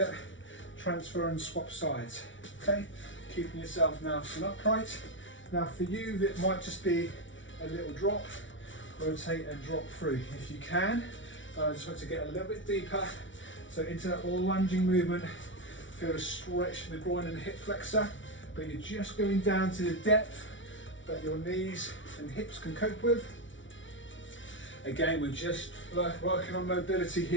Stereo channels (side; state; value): right; late; 0.56 ms